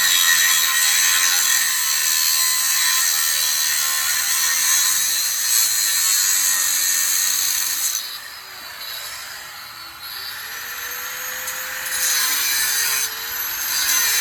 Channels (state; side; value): normal; both; correlation 0.94